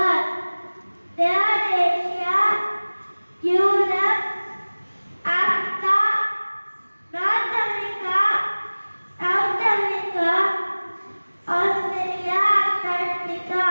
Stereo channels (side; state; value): both; inverted; correlation -1.00